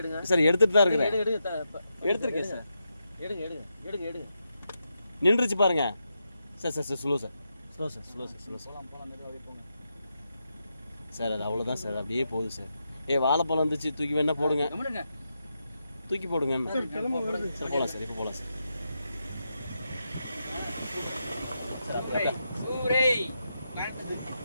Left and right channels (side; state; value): both; inverted; correlation -0.85